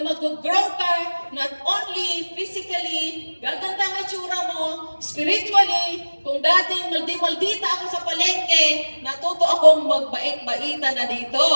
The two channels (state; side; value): inverted; both; correlation -1.00